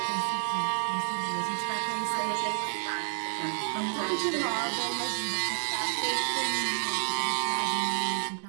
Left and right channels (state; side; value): silent; left; digital silence